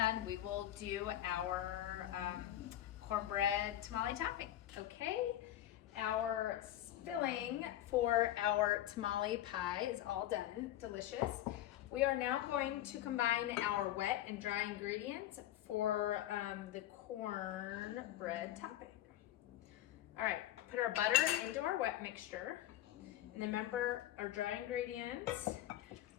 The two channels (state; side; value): quieter; right; 13.1 dB